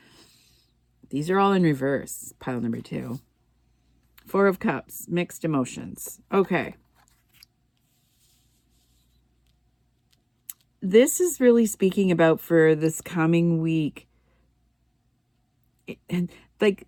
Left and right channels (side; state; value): both; identical; correlation 1.00